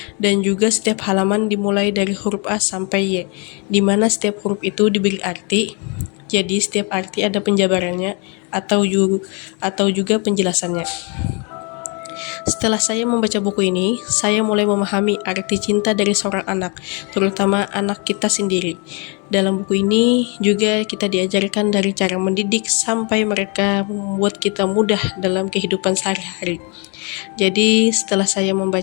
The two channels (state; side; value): quieter; right; 33.0 dB